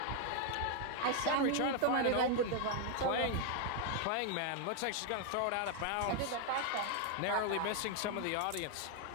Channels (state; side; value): different; both; correlation 0.00